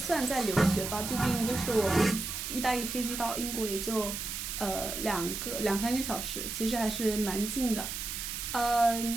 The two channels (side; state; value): right; noise; hiss, 5 dB below the sound